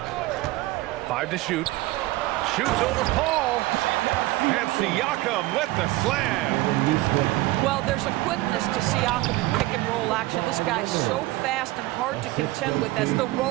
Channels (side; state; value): left; quieter; 18.8 dB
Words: Five to shoot. Shoots over Paul. And Siakam with the slam. Well, there's a quickness to Siakam in pick and roll action. This guy's so fast and hard to contend with as the